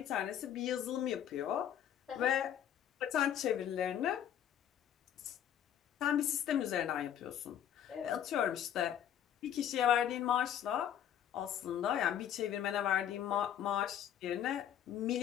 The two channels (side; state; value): right; quieter; 10.0 dB